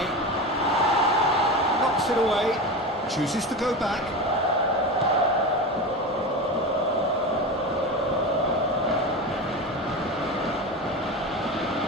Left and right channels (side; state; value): both; normal; correlation 0.24